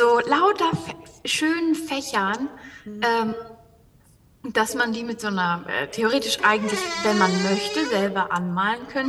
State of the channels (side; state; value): both; identical; correlation 1.00